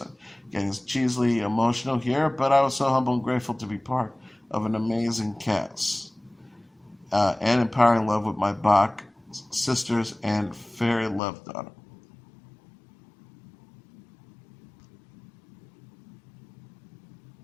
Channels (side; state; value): right; drops out; at 11.2 s